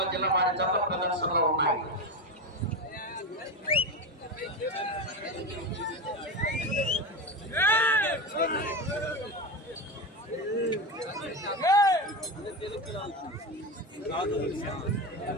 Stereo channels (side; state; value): both; normal; correlation 0.19